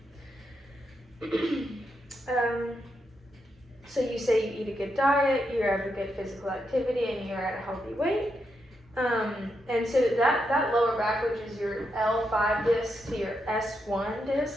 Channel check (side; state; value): both; normal; correlation 0.83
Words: So you say you eat a good diet, you have a good physical activity, and you're at a healthy weight. And so that lower back, which is your L5 disc to your S1